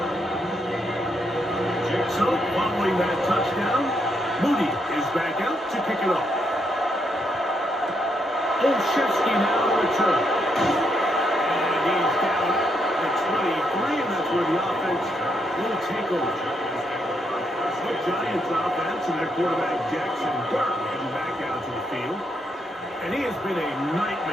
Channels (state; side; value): normal; both; correlation 0.78